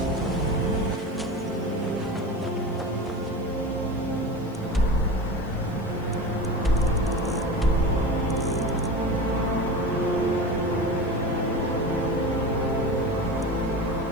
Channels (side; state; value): right; noise; hiss, 29 dB below the sound